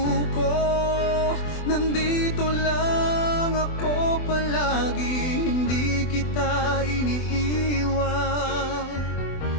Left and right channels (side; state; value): right; late; 24 ms